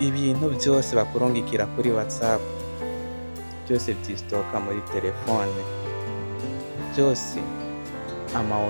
byose bakurungikira kuri WhatsApp byose vyistoka muri telefone, byose ama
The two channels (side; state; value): both; inverted; correlation -1.00